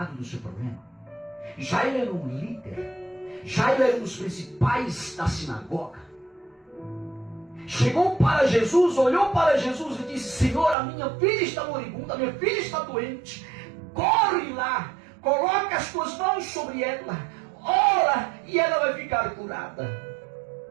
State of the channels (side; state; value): left; drops out; at 10.8 s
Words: do seu problema. Jairo era um líder, Jairo era um dos principais da sinagoga. Chegou para Jesus, olhou para Jesus e disse: Senhor, a minha filha está moribunda, a minha filha está doente. Corre lá, coloca as tuas mãos sobre ela, ora e ela vai ficar curada.